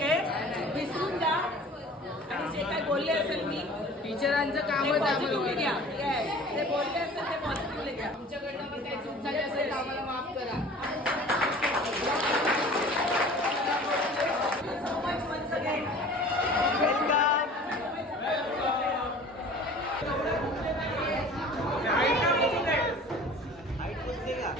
विसरून जा. आणि जे काय बोलले असेल मी टीचरांचं कामच पॉझिटिव्हली घ्या. येस, ते बोलले असेल ते पॉझिटिव्हली घ्या. तुमच्याकडनं पण काही चूक झाली असेल तर आम्हाला माफ करा. So much once again.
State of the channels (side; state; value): both; normal; correlation 0.44